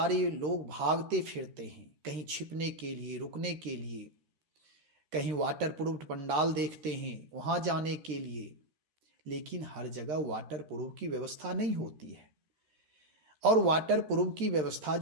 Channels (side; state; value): left; late; 13 ms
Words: लोग भागते फिरते हैं, कहीं छिपने के लिए, रुकने के लिए, कहीं वाटर प्रूफ पंडाल देखते हैं वहाँ जाने के लिए। लेकिन हर जगह वाटर प्रूफ की व्यवस्था नहीं होती है, और वाटर प्रूफ की व्यवस्था